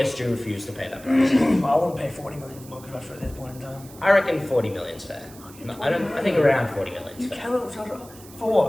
refused to pay that price. I wouldn't pay 40 million for Marcus Rashford at this point in time. I reckon 40 million's fair. I think around 40 million's You fair. cannot for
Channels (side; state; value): right; noise; hiss, 20 dB below the sound